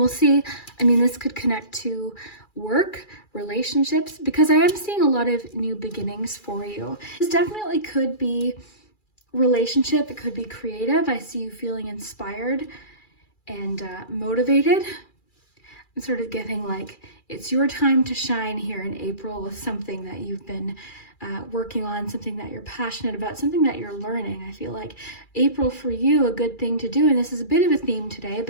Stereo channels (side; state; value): right; late; 2.4 ms